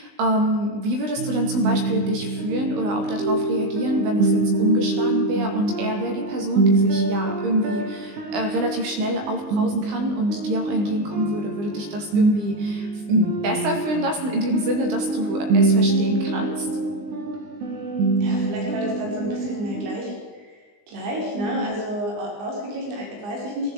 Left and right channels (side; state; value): left; late; 20 ms